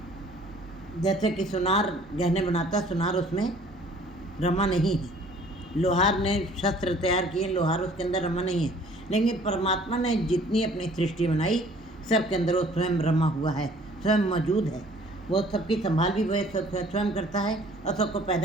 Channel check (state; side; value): normal; both; correlation 0.54